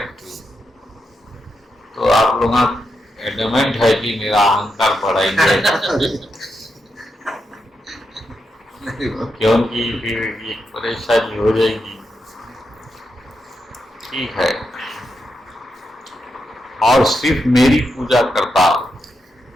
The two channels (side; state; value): both; normal; correlation 0.85